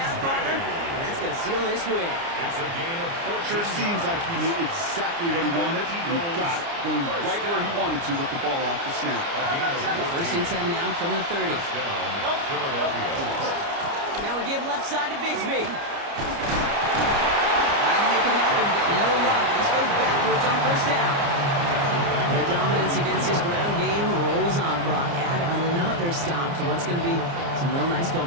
partner. And that's going to seal this win. It's a gain of 14. Sure seems like he knew exactly what he wanted. He got it, going right where he wanted to with the ball off the snap. First and 10 now from the 30. Philadelphia. Now we give left side to Bigsby. Trying to make it happen, but no luck. This goes backwards on first down. Their dominance against his ground game rolls on, Brock. Add another stop to what's going to be some real nice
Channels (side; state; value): left; late; 29 ms